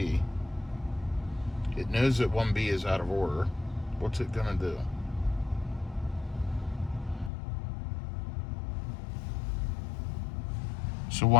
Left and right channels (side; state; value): right; drops out; at 7.3 s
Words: It knows that 1B is out of order. What's it gonna do? So